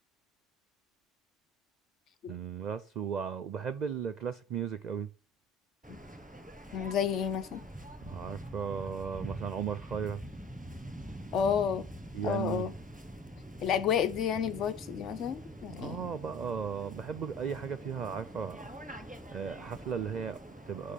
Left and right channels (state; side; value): normal; both; correlation 0.44